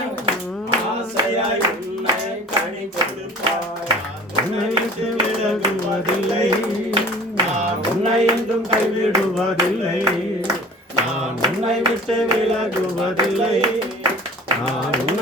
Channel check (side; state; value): both; normal; correlation 0.44